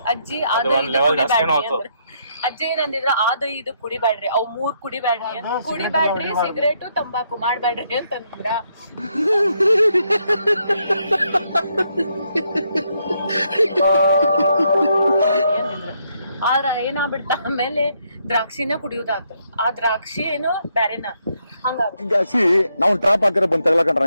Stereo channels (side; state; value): both; inverted; correlation -0.75